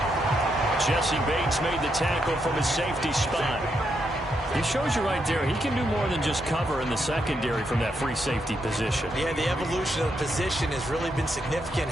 Jesse Bates made the tackle from his safety spot. It shows you right there, he can do more than just cover in the secondary from that free safety position. Yeah, the evolution of the position has really been significant,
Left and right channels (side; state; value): both; normal; correlation 0.80